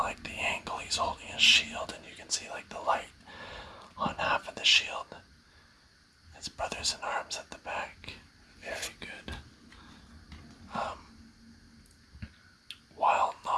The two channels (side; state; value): both; identical; correlation 1.00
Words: the angle he's holding his shield, and you can see like the light on half of the shield. His brothers in arms at the back. Very good. While